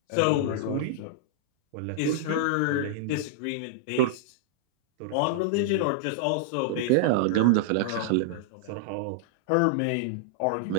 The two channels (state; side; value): different; both; correlation -0.01